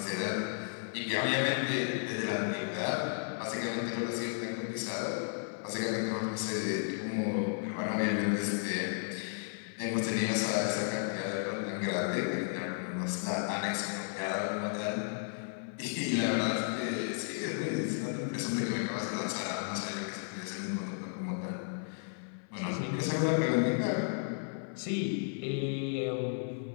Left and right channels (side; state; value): right; silent; 55 dB below the other